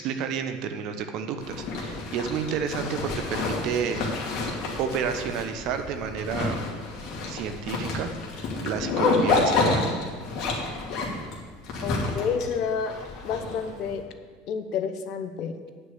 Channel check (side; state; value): both; normal; correlation 0.35